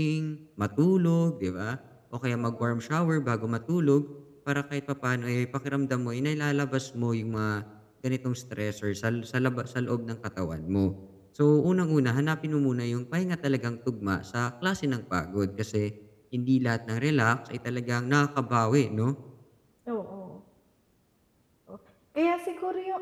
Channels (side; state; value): both; identical; correlation 1.00